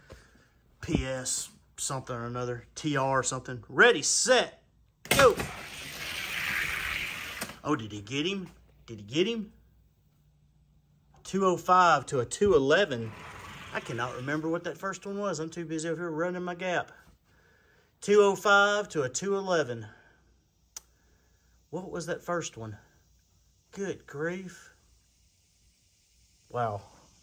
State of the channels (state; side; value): identical; both; correlation 1.00